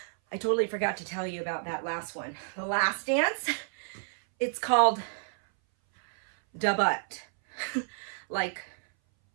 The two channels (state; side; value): silent; left; 58 dB below the other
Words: I totally forgot to tell you about that last one. The last dance, it's called da butt, like